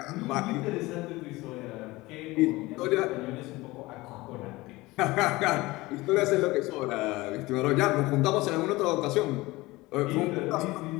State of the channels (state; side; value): quieter; right; 20.6 dB